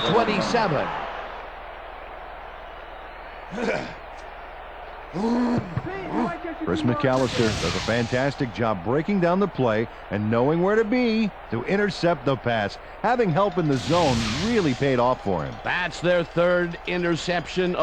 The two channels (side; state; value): both; identical; correlation 1.00